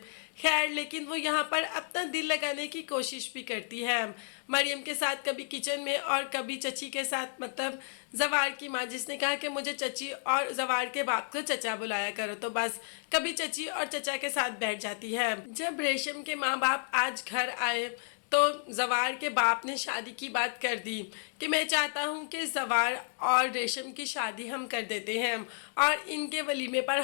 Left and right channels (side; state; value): right; silent; digital silence